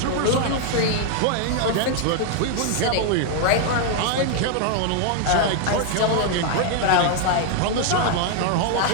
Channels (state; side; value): different; both; correlation 0.00